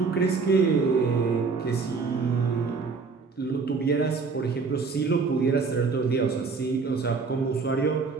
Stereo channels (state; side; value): quieter; left; 4.7 dB